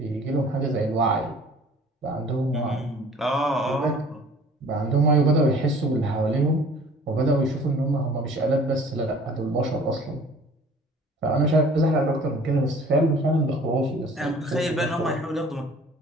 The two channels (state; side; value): normal; both; correlation 0.50